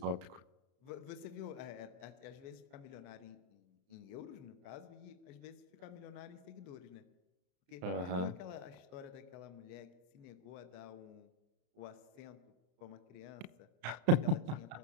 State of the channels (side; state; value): left; late; 34 ms